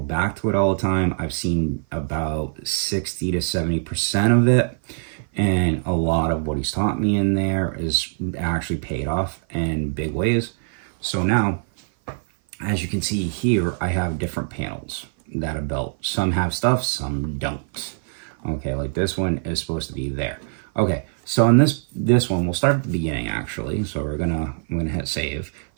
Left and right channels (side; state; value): left; silent; 55 dB below the other